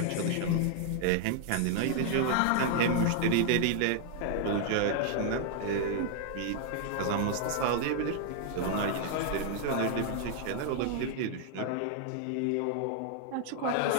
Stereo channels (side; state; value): both; different; correlation 0.00